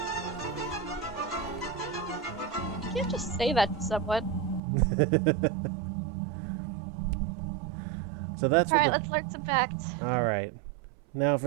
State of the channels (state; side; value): drops out; left; at 4.6 s